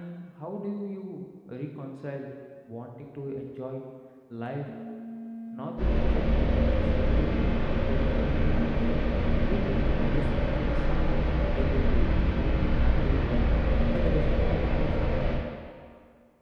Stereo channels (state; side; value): identical; both; correlation 1.00